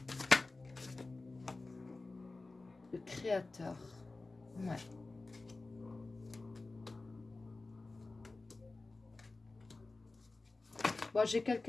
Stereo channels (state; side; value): quieter; right; 3.4 dB